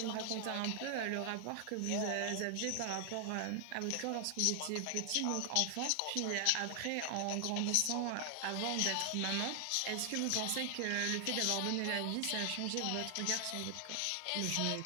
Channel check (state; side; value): different; both; correlation 0.00